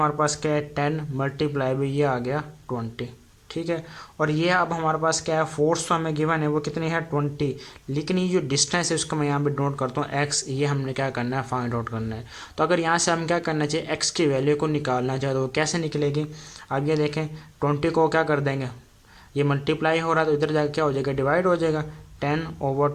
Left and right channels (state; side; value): identical; both; correlation 1.00